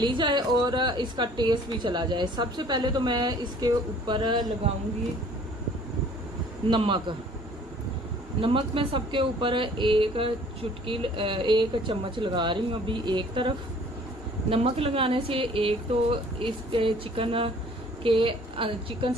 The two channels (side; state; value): both; normal; correlation 0.54